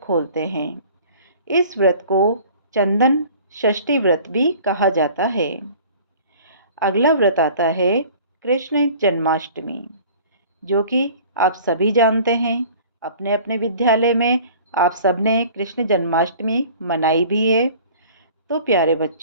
हैं। इस व्रत को चंदन षष्ठी व्रत भी कहा जाता है। अगला व्रत आता है कृष्ण जन्माष्टमी, जो कि आप सभी जानते हैं। अपने अपने विद्यालय में आप सबने कृष्ण जन्माष्टमी मनाई भी है। तो प्यारे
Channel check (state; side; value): inverted; both; correlation -0.47